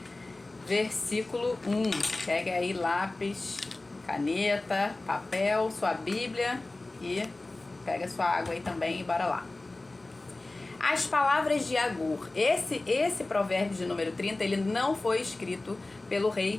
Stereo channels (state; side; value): quieter; right; 3.0 dB